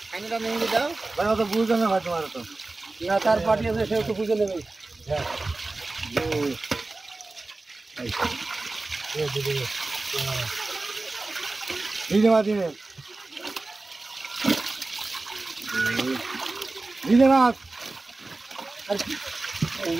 কানিটা নিয়ে যাও ভাই তো বুঝবে না ভাই তোমার তো না তার পার্টি আছে সেও তো বুঝে নেবে হ্যাঁ দিদি মা দিদি দিদি মা এই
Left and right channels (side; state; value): left; quieter; 3.3 dB